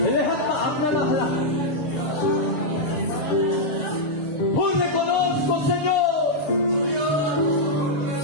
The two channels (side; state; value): right; late; 6.6 ms